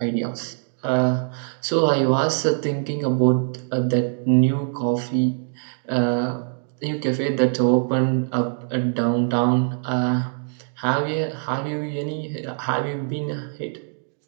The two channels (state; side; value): silent; left; 63 dB below the other